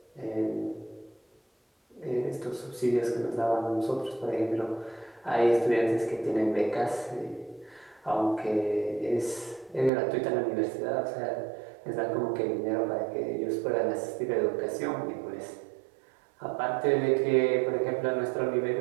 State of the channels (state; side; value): drops out; left; at 9.9 s